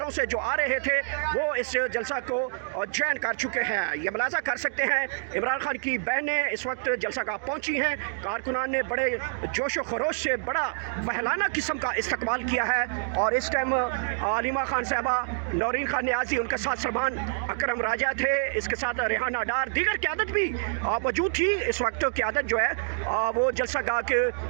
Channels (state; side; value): silent; left; digital silence